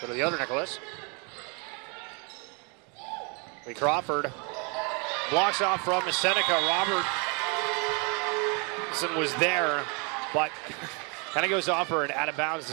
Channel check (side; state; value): left; quieter; 33.5 dB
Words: to the other Nicholas. Lee Crawford blocks off from Seneca. Robertson was there, but kind of goes off her and out of bounds